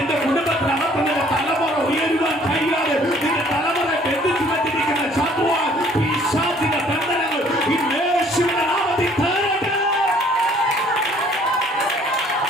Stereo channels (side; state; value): both; normal; correlation 0.58